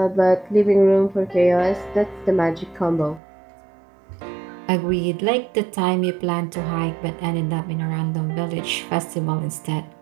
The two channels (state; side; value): drops out; left; at 3.2 s